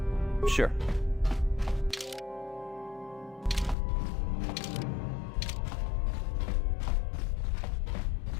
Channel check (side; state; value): right; drops out; at 3.8 s